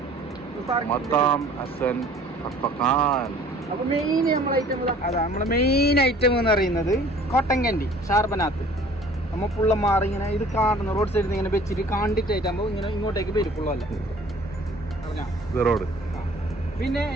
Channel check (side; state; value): both; normal; correlation 0.51